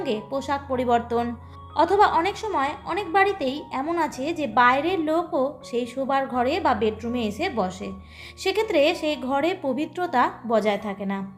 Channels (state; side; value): identical; both; correlation 1.00